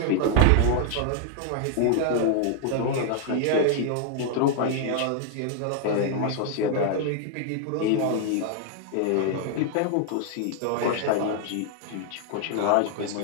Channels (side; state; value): both; different; correlation 0.00